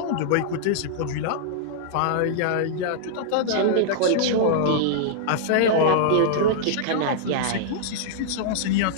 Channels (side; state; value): both; different; correlation -0.01